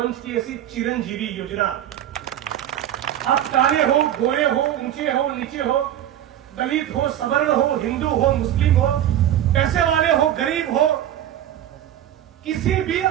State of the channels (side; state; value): left; quieter; 11.5 dB